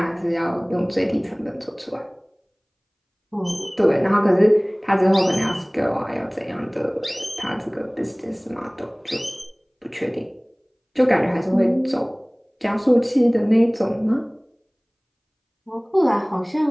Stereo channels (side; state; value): both; identical; correlation 1.00